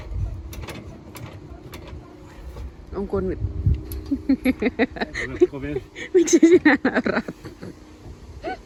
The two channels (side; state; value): both; identical; correlation 1.00